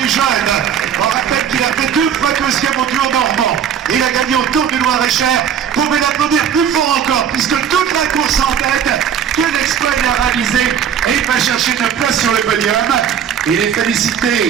jeunes. On rappelle qu'il a fait 2 fois 2e au Tour normand. Il a gagné au Tour du Loir-et-Cher. Vous pouvez l'applaudir plus fort encore, puisque toute la course en tête, quel exploit il a réalisé. Et il va chercher une place sur sur le podium et les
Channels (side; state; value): left; quieter; 8.3 dB